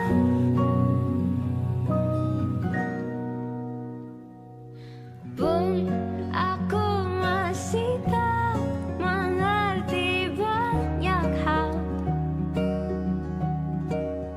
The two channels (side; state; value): both; identical; correlation 1.00